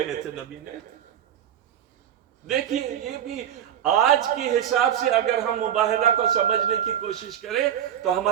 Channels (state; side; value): quieter; left; 10.0 dB